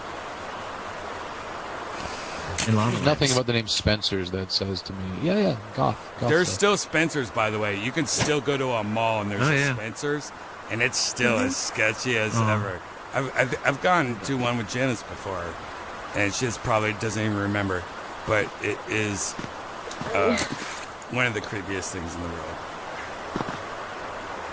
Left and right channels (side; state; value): both; identical; correlation 1.00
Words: In Lava There's nothing Lamps. about the name Spencer's that says to me, yeah, goth. There's stuff. still Spencer's, by the way. You can still go to a mall and there's Oh, a yeah. Spencer's, and it's still as sketchy as Oh. ever. I've gone to one with Janice before, and she just probably doesn't even remember, but it is one of the creepiest things in the world.